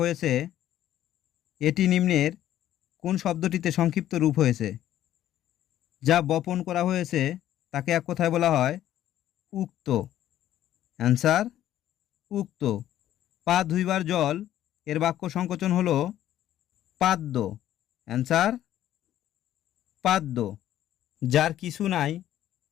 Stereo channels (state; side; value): quieter; right; 12.4 dB